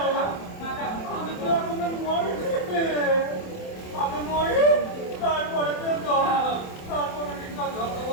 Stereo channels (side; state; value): right; late; 27 ms